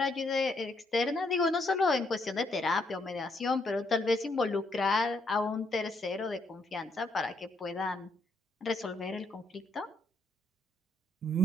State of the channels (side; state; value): both; normal; correlation 0.74